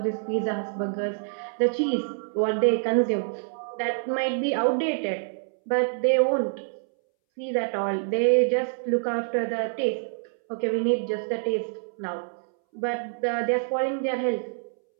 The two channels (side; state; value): left; silent; 61 dB below the other